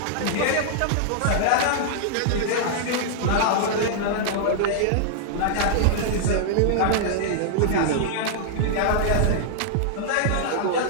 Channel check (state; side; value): different; both; correlation -0.01